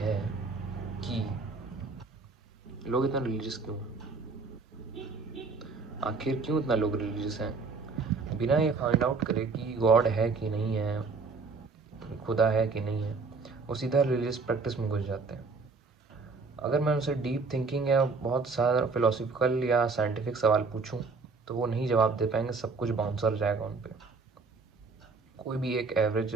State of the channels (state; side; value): quieter; left; 4.3 dB